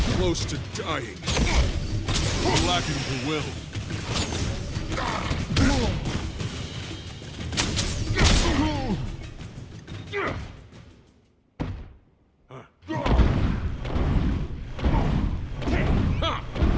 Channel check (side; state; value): both; identical; correlation 1.00